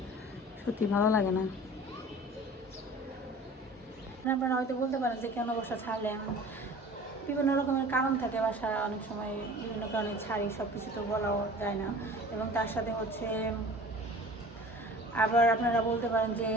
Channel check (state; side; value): normal; both; correlation 0.43